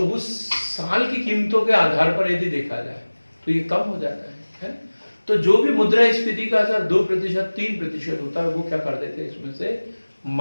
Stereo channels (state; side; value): inverted; both; correlation -1.00